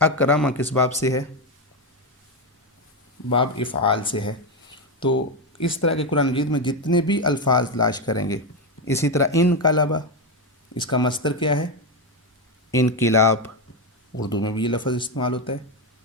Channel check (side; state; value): both; normal; correlation 0.09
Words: اکرم کس باب سے ہے؟ باب افعال سے ہے۔ تو اس طرح کے قرآن مجید میں جتنے بھی الفاظ تلاش کریں گے، اسی طرح انقلب، اس کا مصدر کیا ہے؟ انقلاب، اردو میں بھی یہ لفظ استعمال ہوتا ہے،